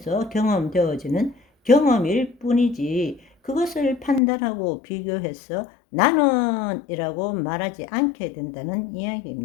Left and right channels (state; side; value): drops out; right; at 4.2 s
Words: 경험되어지는 경험일 뿐이지, 그것을 판단하고 비교해서 나는 이라고 말하지 않게 된다는